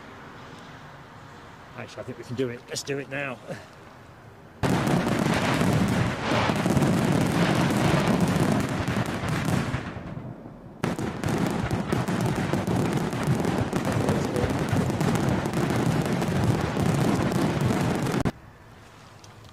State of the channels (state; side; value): identical; both; correlation 1.00